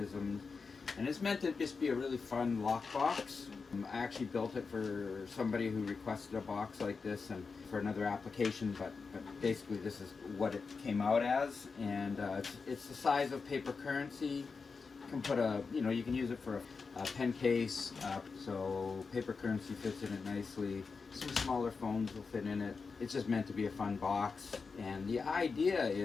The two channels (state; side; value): quieter; right; 4.8 dB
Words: And it's meant to just be a really fun lock box. I actually built it for somebody who requested a box like this and for another application, but basically this is what it came out as. And it's the size of paper currency. You can put you can use it for a pen case, so paper currency fits in it nicely. Some smaller phones will fit in it. It's just meant to be a fun box. And the idea